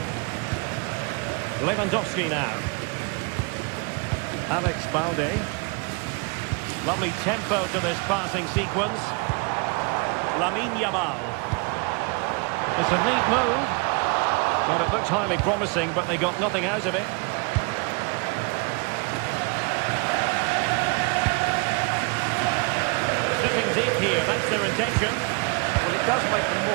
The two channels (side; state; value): left; quieter; 30.4 dB